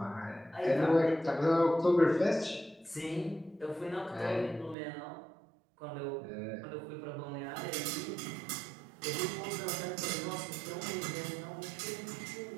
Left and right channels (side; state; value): left; drops out; at 4.8 s